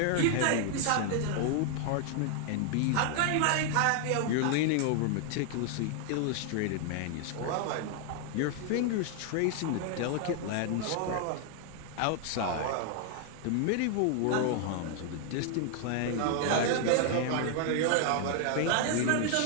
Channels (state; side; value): different; both; correlation 0.00